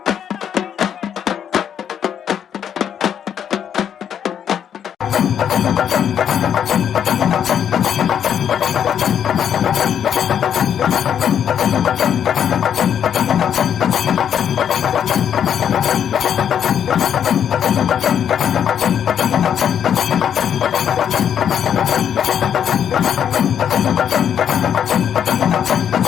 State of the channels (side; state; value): right; quieter; 8.8 dB